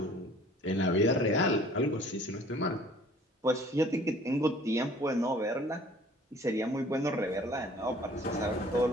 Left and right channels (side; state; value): both; normal; correlation 0.52